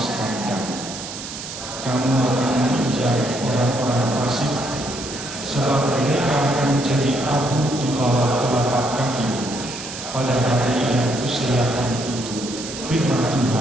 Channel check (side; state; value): right; noise; hiss, 9 dB below the sound